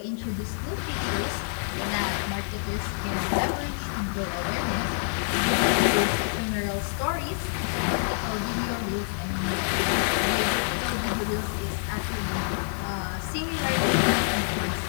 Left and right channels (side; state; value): right; silent; 60 dB below the other